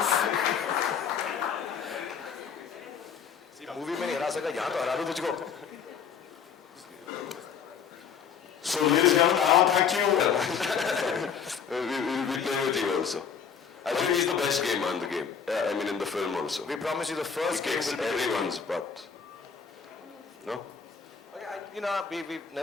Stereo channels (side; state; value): right; quieter; 6.9 dB